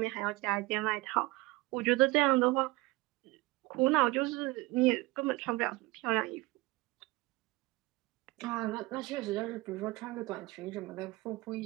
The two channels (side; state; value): left; quieter; 22.1 dB